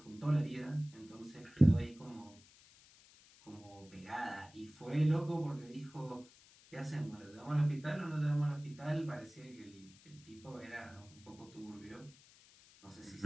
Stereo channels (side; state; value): left; noise; hiss, 24 dB below the sound